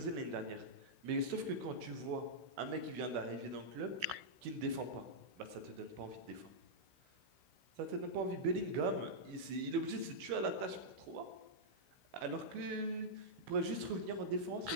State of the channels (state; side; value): late; left; 16 ms